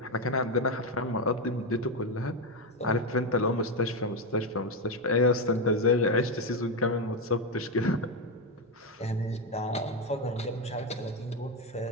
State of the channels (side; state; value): both; normal; correlation 0.09